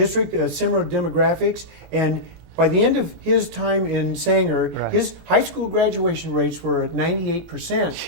similar demographics, and by the end of his time in Sanger, his high school graduation rates were at 98%.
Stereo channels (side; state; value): left; late; 19 ms